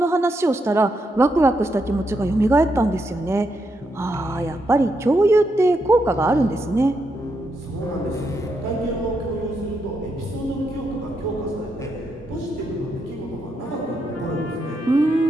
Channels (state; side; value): normal; both; correlation 0.81